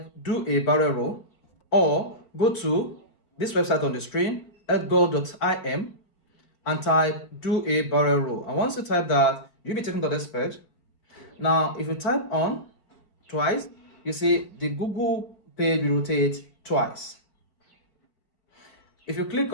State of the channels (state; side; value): late; right; 5.0 ms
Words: do a barrel roll, or go to this website on the screen, edgar.im, and type do a barrel roll. And once you type that, you'll be taken to this page. Now, if you type on twice, you see the Google page will rotate twice. If you click